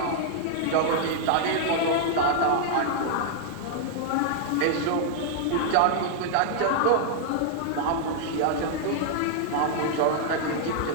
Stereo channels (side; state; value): both; different; correlation -0.01